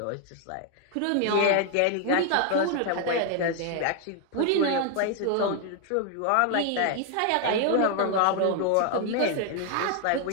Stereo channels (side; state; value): both; different; correlation 0.00